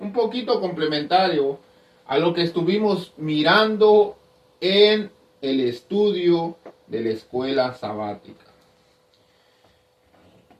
poquito complementario a lo que estuvimos mirando en el estudio de la escuela sabática.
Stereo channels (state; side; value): identical; both; correlation 1.00